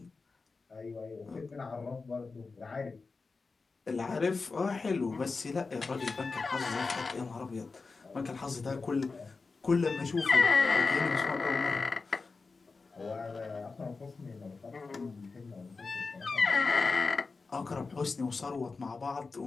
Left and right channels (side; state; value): right; quieter; 4.2 dB